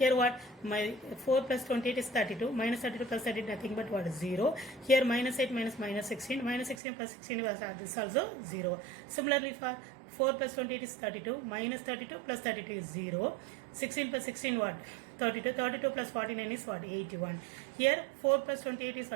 what? My 4 plus 28 is 32. Minus 32 plus 30 nothing but what? 0. Here minus 8 minus minus 16. Minus 16 plus 16 was this also 0. Similarly for 4 plus 28 is 32. Minus 32 plus 32 is 0. 16 plus 16 what? 32. 32 plus 49 is what? 81. Here 4 plus 28 is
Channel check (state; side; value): drops out; left; at 6.8 s